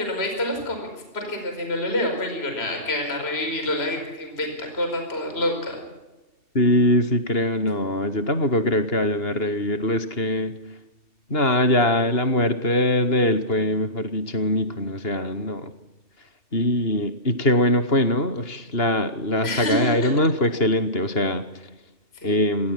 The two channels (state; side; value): late; right; 3.0 ms